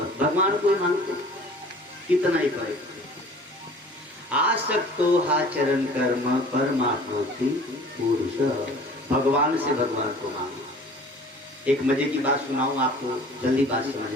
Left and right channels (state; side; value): normal; both; correlation 0.47